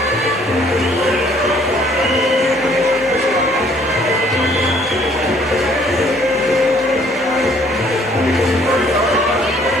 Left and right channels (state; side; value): normal; both; correlation 0.61